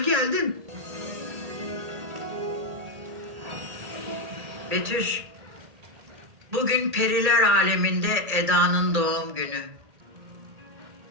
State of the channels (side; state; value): left; late; 1.8 ms